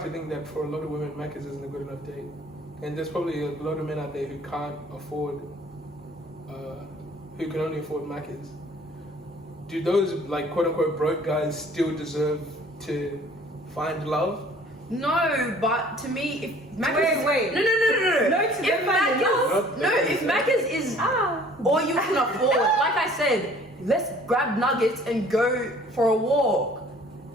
to think that for a lot of women, Maccas isn't a good enough date, and there's probably a lot of men out there who can't afford, who can only afford Maccas. Do those like quote unquote broke guys still deserve to find love? no, but to me, if Maccas, Wait. no. If Maccas is all you can afford, like I said, let's grab nuggets and go for a walk.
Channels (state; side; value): normal; both; correlation 0.53